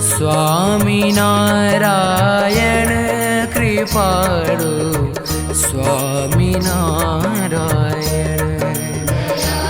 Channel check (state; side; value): identical; both; correlation 1.00